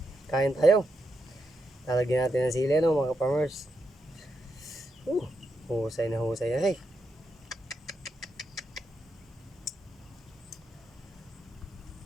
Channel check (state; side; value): normal; both; correlation 0.83